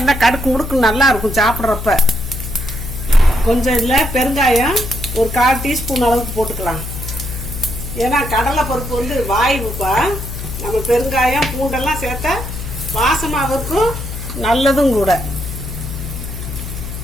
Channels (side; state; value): left; noise; hum, 7 dB below the sound